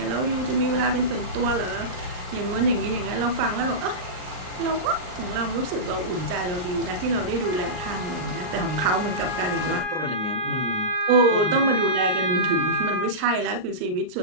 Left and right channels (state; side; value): late; left; 39 ms